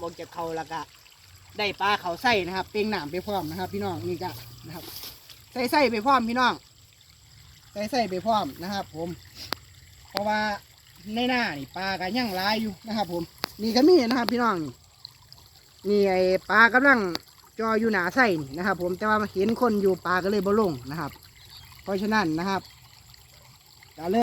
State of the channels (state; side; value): identical; both; correlation 1.00